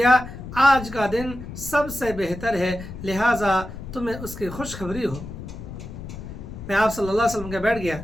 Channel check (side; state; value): left; noise; rumble, 11 dB below the sound